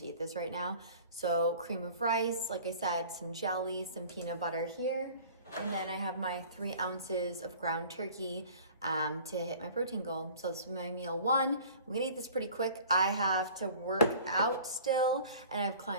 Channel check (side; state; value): both; inverted; correlation -0.46